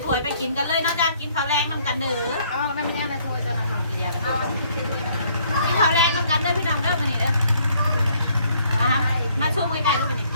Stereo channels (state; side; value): inverted; both; correlation -0.64